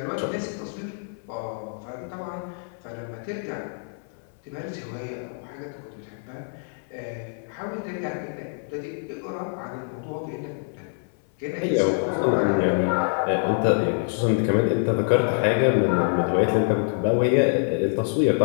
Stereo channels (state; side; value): silent; right; 61 dB below the other